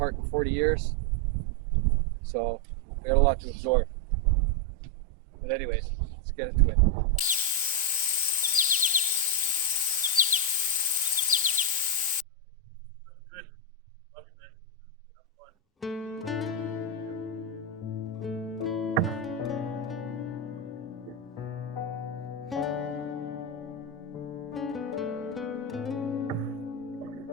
in 40 years, so I got a lot to absorb. But anyways, let's get into it.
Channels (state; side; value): normal; both; correlation 0.02